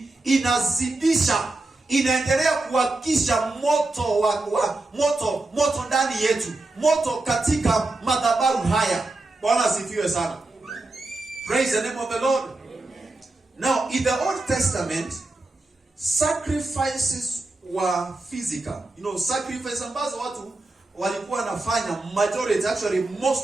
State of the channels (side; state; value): left; quieter; 3.0 dB